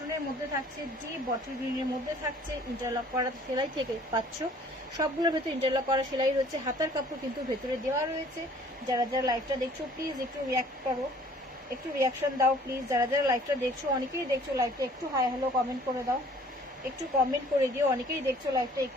মধ্যে থাকছে, ডিপ বটল গ্রিনের মধ্যে থাকছে, ইন্টারলক করা সেলাই থেকে পাচ্ছ, সবগুলোর ভেতরে ইন্টারলক করা সেলাই রয়েছে, হাতার কাপড় কিন্তু ভেতরে দেওয়া রয়েছে। যারা যারা লাইভটা দেখছো প্লিজ একটু রিয়াক্ট করো, একটু রিয়াকশন দাও প্লিজ, যারা যারা লাইভটা দেখছো, অনেকেই দেখছো লাইভটা, একটু হাই হ্যালো কমেন্ট করে দাও, একটু কমেন্ট করে দিও, অনেকেই দেখছো লাইভটা,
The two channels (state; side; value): normal; both; correlation 0.54